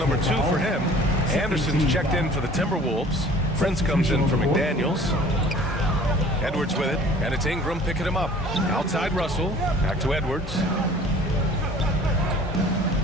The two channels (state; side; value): normal; both; correlation 0.49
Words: 2 for him. Anderson's checked in for the Timberwolves. Prince comes in for McDaniels. Edwards with it, and it's Ingram picking him up. Outside Russell, back to Edwards.